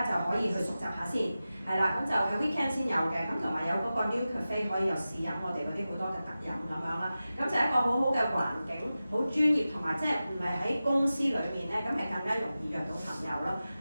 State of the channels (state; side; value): inverted; both; correlation -0.94